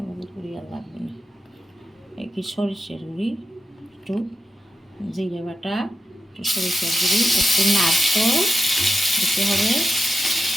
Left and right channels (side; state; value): both; normal; correlation 0.89